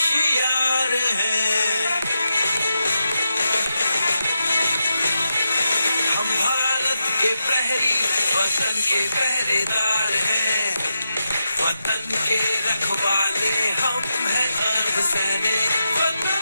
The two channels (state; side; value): inverted; both; correlation -0.87